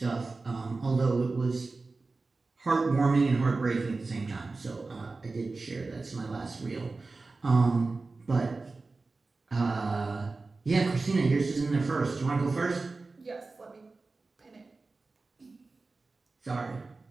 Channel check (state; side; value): quieter; left; 3.7 dB